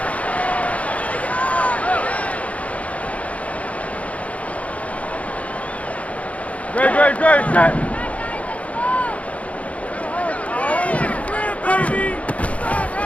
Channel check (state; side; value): late; right; 0.066 ms